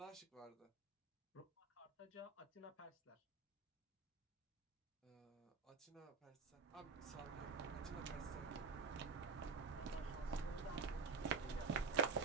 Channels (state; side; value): quieter; left; 4.8 dB